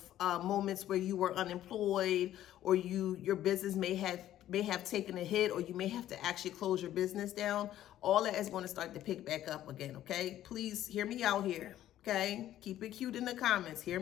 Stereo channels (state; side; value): quieter; right; 12.7 dB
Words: moments where you were unemployed, or your business may have taken a hit, or you may have to actually close your business down, all that is going to start to pick back up again, okay? Please hear me out here, okay? Keep it cute in the comments. Hear